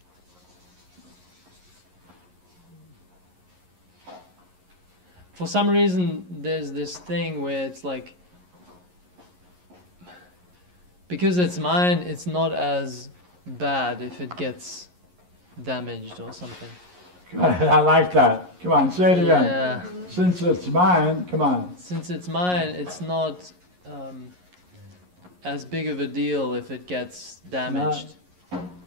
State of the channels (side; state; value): left; late; 11 ms